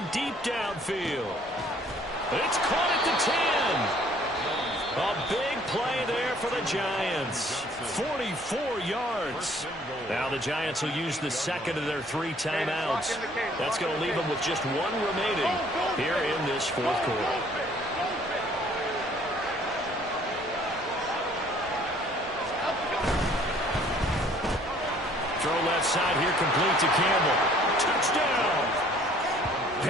deep downfield. It's caught at the 10. A big play there for the Giants. 44 yards. Now the Giants will use the second of their 3 timeouts. That's going to leave them with just 1 remaining here in this fourth quarter. Throw left side here, complete to Campbell. Touchdown!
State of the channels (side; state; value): both; normal; correlation 0.58